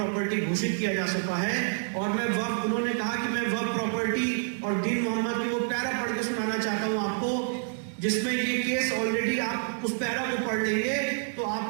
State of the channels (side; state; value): left; silent; 59 dB below the other